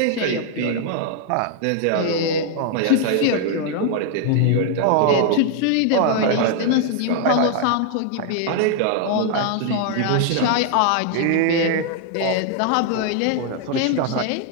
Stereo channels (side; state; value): both; different; correlation 0.00